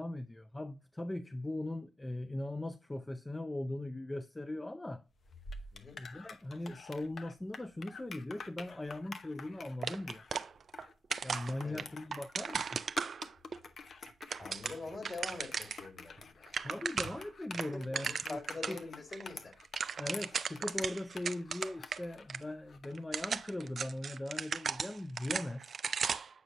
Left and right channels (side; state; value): both; normal; correlation 0.89